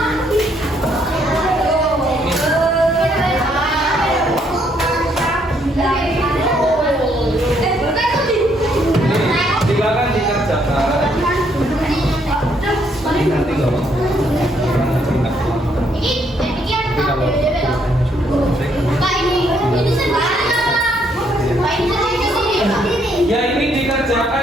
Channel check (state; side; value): normal; both; correlation 0.71